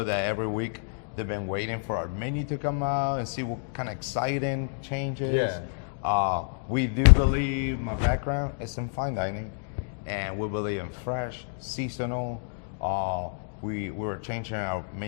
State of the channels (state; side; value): silent; right; digital silence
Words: that every week they've been waiting for our menu to come out and see what kind of exciting changes. Yeah. We do believe, my background is in fine dining, and we believe in fresh, seasonal. We were changing our